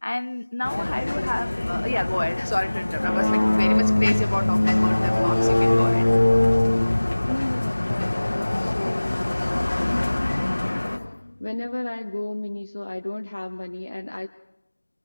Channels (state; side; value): inverted; both; correlation -1.00